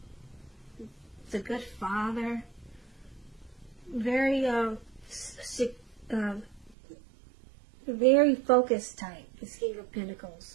It's a good father, very very focused type, the King of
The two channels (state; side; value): drops out; left; at 6.8 s